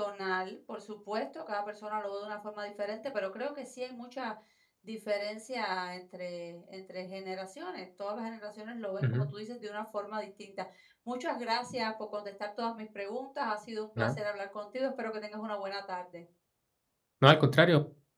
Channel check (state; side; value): identical; both; correlation 1.00